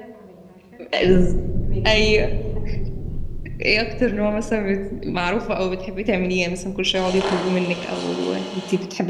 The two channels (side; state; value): both; identical; correlation 1.00